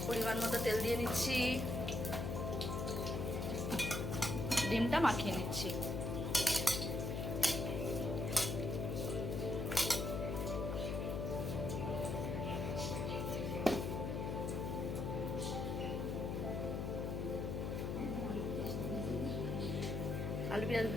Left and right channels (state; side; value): noise; left; hum, 1 dB below the sound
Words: পরিমাণ মতো তেল দিয়ে নিচ্ছি, ডিমটা মাখিয়ে নিচ্ছি। আলু পেঁয়াজ